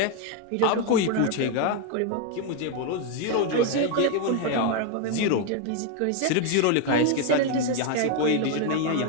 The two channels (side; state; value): both; different; correlation 0.01